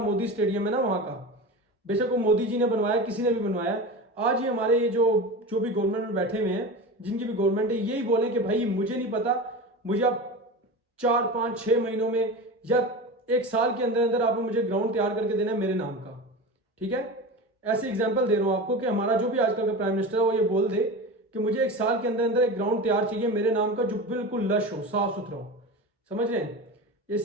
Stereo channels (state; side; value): normal; both; correlation 0.28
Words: स्टेडियम है ना वहां का, बेशक वो मोदी जी ने बनवाया, किसी ने भी बनवाया, आज ही हमारे ये जो भी गवर्नमेंट में बैठे हुए हैं, जिनकी भी गवर्नमेंट है, यही बोले कि भाई मुझे नहीं पता, मुझे आप 4-5-6 महीनों में या 1 साल के अंदर अंदर आपने मुझे ग्राउंड तैयार करके देना है मेरे नाम का। ठीक है, ऐसे एग्जाम्पल दे रहा हूं आपको कि हमारा जो भी आजकल का प्राइम मिनिस्टर है वो ये बोल दे कि मुझे 1 साल के अंदर अंदर एक ग्राउंड तैयार चाहिए मेरे नाम का जो बिल्कुल लश हो, साफ सुथरा हो। समझ रहे हैं? ये